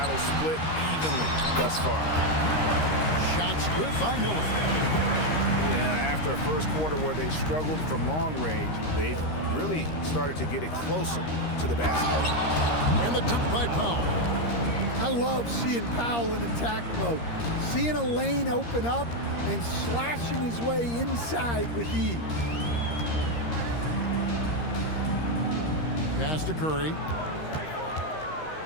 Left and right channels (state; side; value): late; right; 13 ms